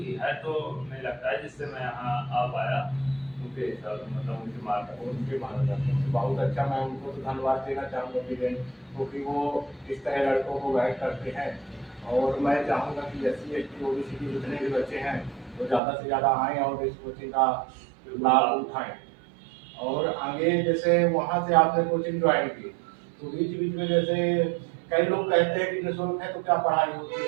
है, तो नहीं लगता है, जिससे मैं यहाँ आ पाया उनके हिसाब से, मतलब उनके मार्गदर्शन से। बहुत अच्छा, मैं उनको तो धन्यवाद देना चाहूँगा वीरेंद्र, क्योंकि वो इस तरह लड़कों को गाइड करते हैं। और मैं चाहूँगा कि SC ST OBC के जितने भी बच्चे हैं वो ज़्यादा से ज़्यादा आएँ और इस कोचिंग का लाभ उठाएं। और आगे जैसे वहाँ से आपने कोचिंग ज्वाइन की, तो बीच बीच में जैसे कई लोग कहते हैं कि निःशुल्क है, तो क्या पढ़ाई होती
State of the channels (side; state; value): left; drops out; at 15.8 s